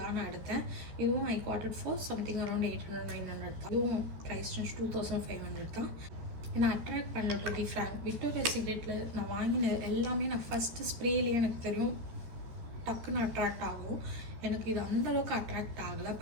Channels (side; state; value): left; late; 13 ms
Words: தான் நான் எடுத்தேன். இதுவும் I got it for something around 800-900 தான். இதுவும் ப்ரைஸ் 2500 தான். என்னை அட்ராக்ட் பண்ணல டு பி ஃப்ராங்க். விக்டோரியா சீக்ரெட்டில் நான் வாங்கின எல்லாமே நான் ஃபஸ்ட்டு ஸ்ப்ரேலேயே எனக்கு தெரியும் டக்குன்னு அட்ராக்ட் ஆகும். எனக்கு இது அந்தளவுக்கு அட்ராக்ட் ஆகலை.